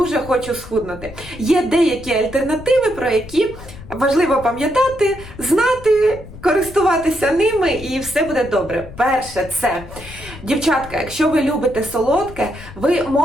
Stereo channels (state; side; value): noise; left; rumble, 16 dB below the sound